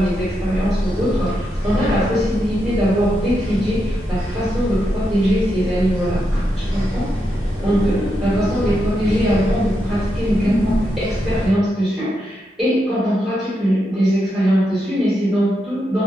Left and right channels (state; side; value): normal; both; correlation 0.83